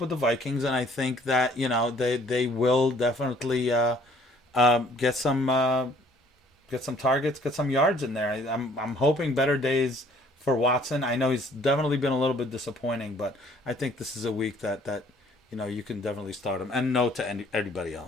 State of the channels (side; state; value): both; normal; correlation 0.58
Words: with the Vikings, and I think that they will definitely get some targets, get some yards in there. I'm hoping better days for Watson. I know he's definitely been a little bit disappointing, but I think this is a week that you can definitely start him, and no to anybody